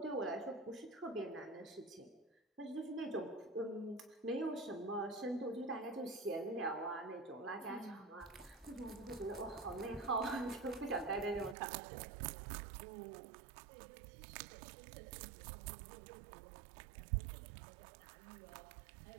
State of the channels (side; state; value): left; drops out; at 11.6 s